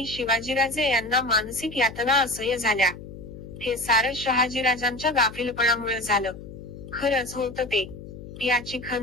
शिवाजीराजे यांना मानसिक यातना असह्य झाल्या. हे सारं शहाजीराजांच्या गाफीलपणामुळे झालं. खरंच होतं ते. याची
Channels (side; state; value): left; noise; hum, 13 dB below the sound